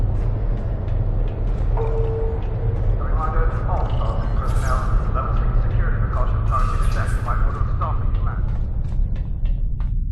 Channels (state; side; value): identical; both; correlation 1.00